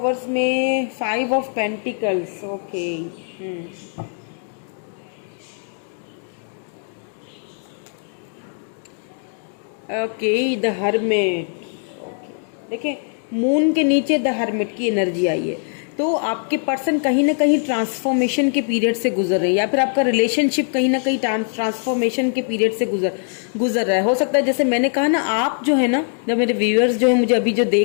में 5 of pentacles, okay. Okay, the hermit, okay. देखिए, मून के नीचे द हर्मिट की एनर्जी आई है, तो आपके पर्सन कहीं ना कहीं ट्रांसफॉर्मेशन के पीरियड से गुजर रहे हैं, या फिर आपका रिलेशनशिप कहीं ना कहीं ट्रांसफॉर्मेशन के पीरियड से गुजर रहा है। हो सकता है, जैसे मैंने कहा ना, आप जो है ना, जब मेरे व्यूअर्स जो है मुझे अभी जो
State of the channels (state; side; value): silent; right; 59 dB below the other